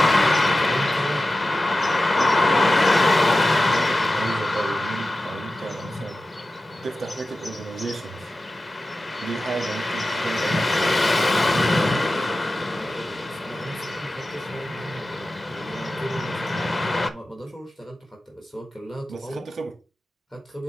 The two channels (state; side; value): normal; both; correlation 0.94